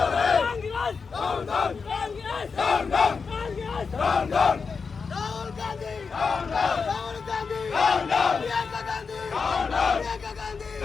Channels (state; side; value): quieter; right; 5.2 dB